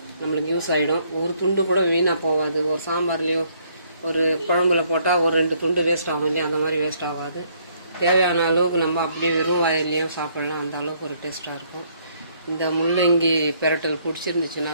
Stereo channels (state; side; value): inverted; both; correlation -0.67